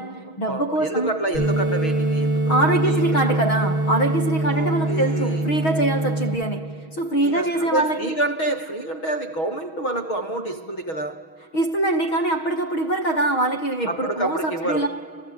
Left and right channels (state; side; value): late; right; 6.3 ms